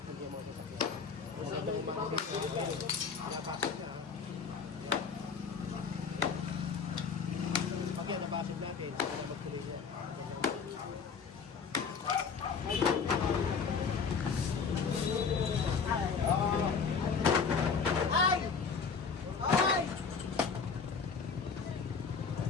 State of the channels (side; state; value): right; quieter; 5.6 dB